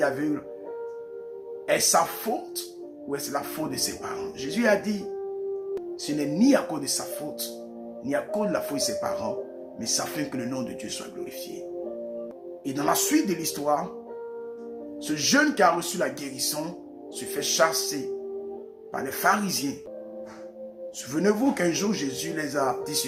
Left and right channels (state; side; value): identical; both; correlation 1.00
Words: aveugle, est-ce sa faute ou est-ce la faute de ses parents? Jésus a dit, ce n'est ni à cause de sa faute, ni à cause de la faute de ses parents, mais ça fait que le nom de Dieu soit glorifié. Et dans la suite de l'histoire, ce jeune qui a reçu la guérison se fait chasser par les pharisiens. Souvenez-vous qu'un jour Jésus les a dit